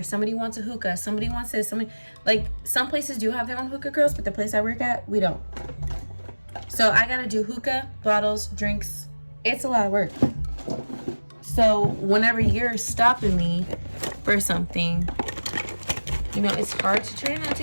somebody wants a hookah, somebody wants this, somebody, like, some places do have their own hookah girls, but the place I work at, we don't. So I gotta do hookah, bottles, drinks. It's a lot of work. So whenever you're stopping me for something, you know, it's hard to try not to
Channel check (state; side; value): inverted; both; correlation -1.00